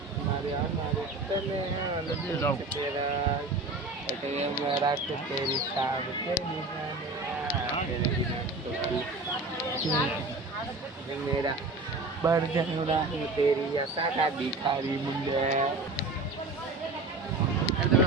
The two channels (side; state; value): left; quieter; 3.2 dB